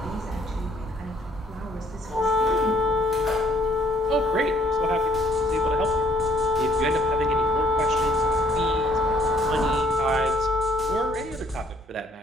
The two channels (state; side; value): normal; both; correlation 0.63